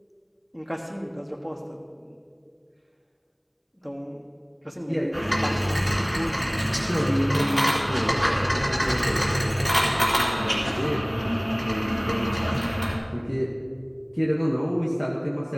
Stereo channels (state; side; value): identical; both; correlation 1.00